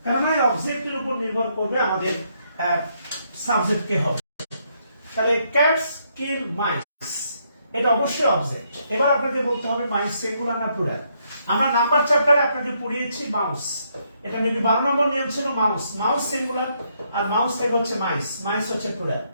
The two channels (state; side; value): inverted; both; correlation -0.74